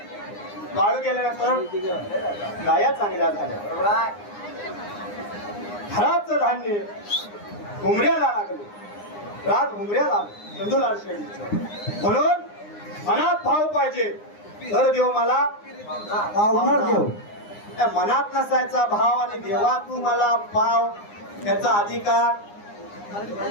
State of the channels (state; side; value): late; right; 9.8 ms